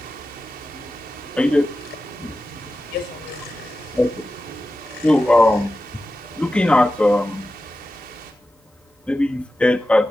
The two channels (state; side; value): normal; both; correlation 0.93